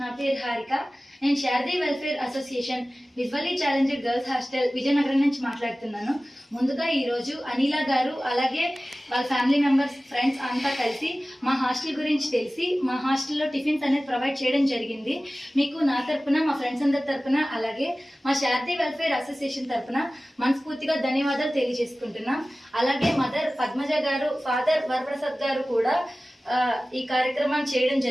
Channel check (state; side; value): normal; both; correlation 0.97